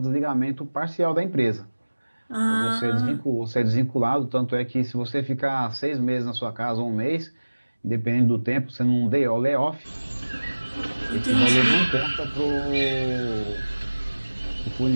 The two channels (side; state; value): both; inverted; correlation -1.00